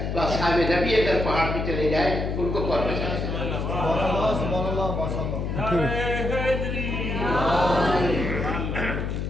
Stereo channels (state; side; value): noise; left; hum, 2 dB below the sound